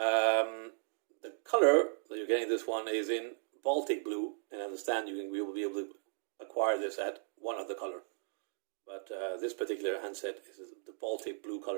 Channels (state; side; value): silent; left; digital silence